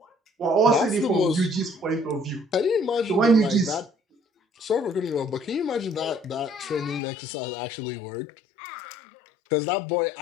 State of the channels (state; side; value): drops out; right; at 7.0 s